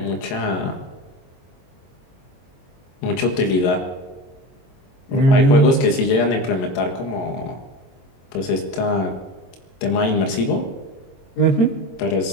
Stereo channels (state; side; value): late; right; 22 ms